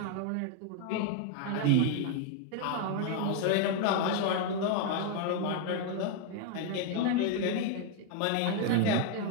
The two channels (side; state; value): both; different; correlation 0.01